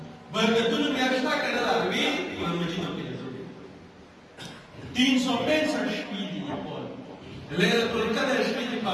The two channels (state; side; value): identical; both; correlation 1.00